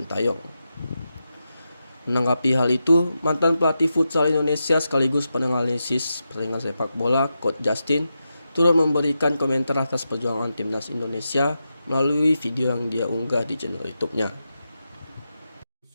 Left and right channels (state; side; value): inverted; both; correlation -0.89